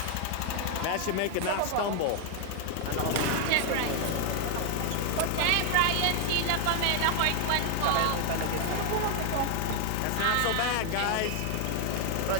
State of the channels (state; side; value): different; both; correlation 0.00